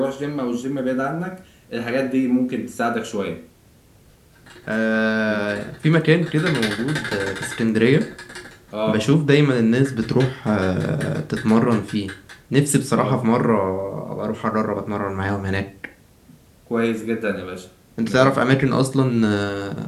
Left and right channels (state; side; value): identical; both; correlation 1.00